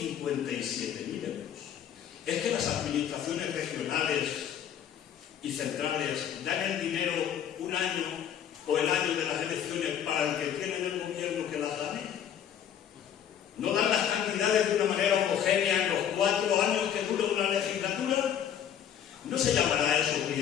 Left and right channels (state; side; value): quieter; right; 9.3 dB